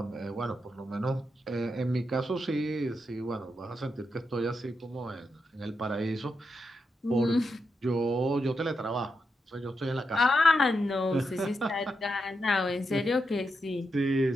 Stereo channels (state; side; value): normal; both; correlation 0.85